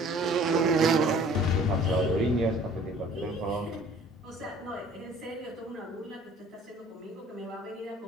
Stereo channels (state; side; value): normal; both; correlation 0.52